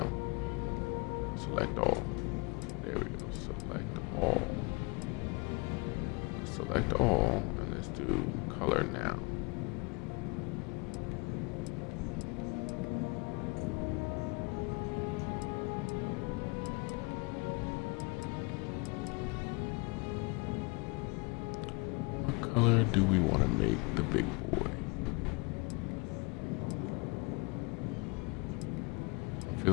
Select all. There we go. Select all. Select all, and let's do color now. What color do we want to make the big boy? I'm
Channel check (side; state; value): right; quieter; 28.9 dB